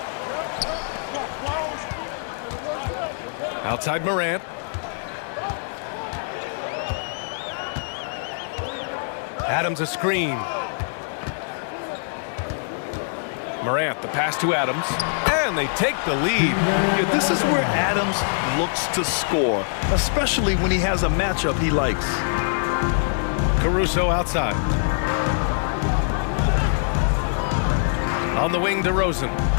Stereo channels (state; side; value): silent; right; 63 dB below the other